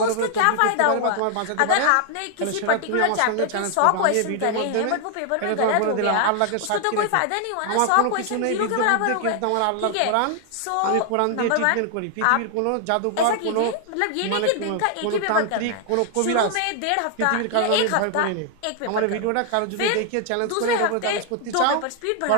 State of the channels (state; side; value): different; both; correlation 0.00